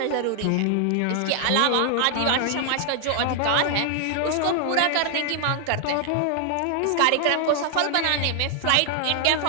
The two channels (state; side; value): different; both; correlation 0.00